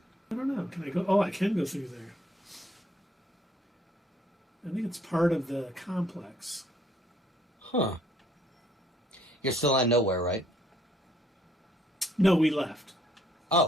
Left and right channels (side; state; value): both; normal; correlation 0.65